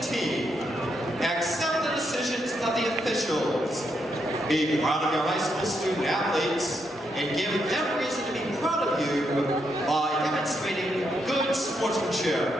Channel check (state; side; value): normal; both; correlation 0.80